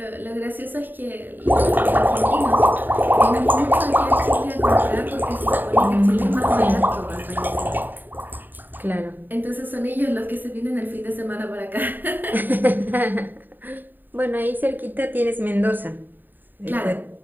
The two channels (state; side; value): late; left; 0.091 ms